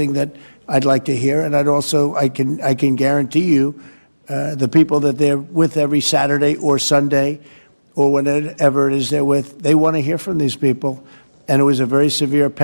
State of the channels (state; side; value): inverted; both; correlation -1.00